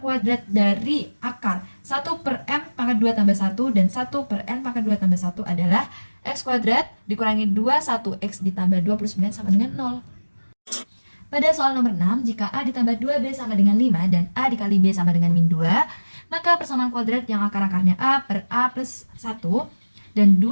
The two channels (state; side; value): inverted; both; correlation -1.00